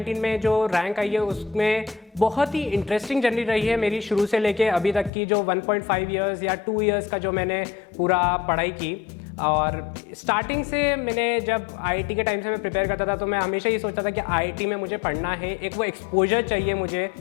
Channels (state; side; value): drops out; right; at 5.1 s